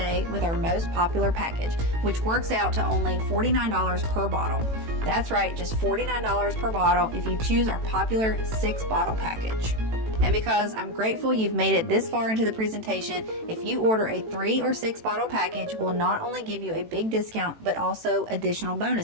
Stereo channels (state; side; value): late; left; 18 ms